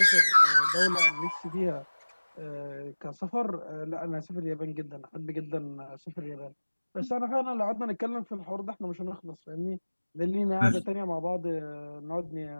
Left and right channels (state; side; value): inverted; both; correlation -1.00